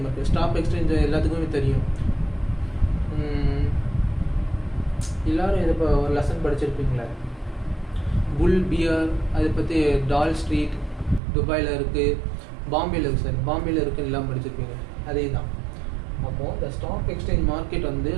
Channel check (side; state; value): left; drops out; at 11.2 s